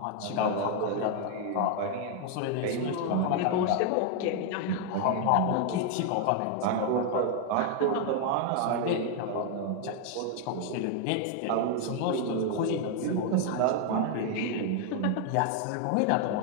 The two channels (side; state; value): both; different; correlation 0.00